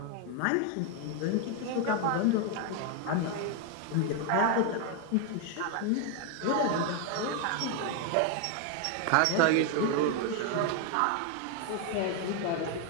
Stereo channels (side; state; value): both; different; correlation 0.01